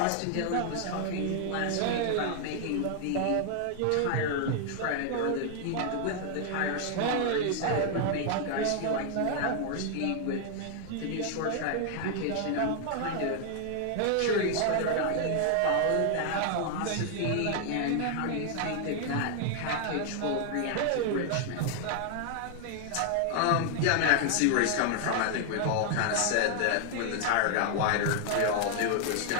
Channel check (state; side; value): different; both; correlation 0.00